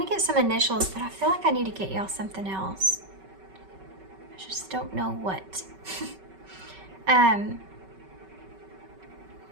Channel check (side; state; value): left; late; 5.3 ms